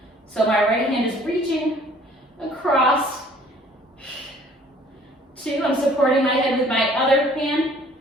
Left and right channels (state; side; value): normal; both; correlation 0.56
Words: So my right hand is reaching across. 2, I'm supporting my head with my other hand.